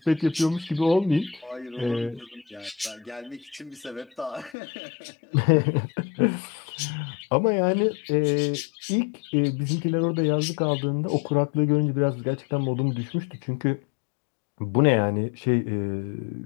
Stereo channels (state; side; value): drops out; right; at 4.5 s